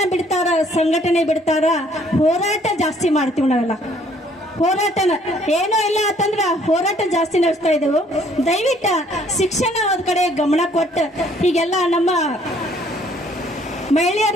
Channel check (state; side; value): normal; both; correlation 0.61